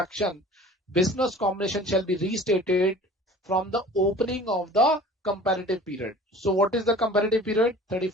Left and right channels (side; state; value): both; normal; correlation 0.44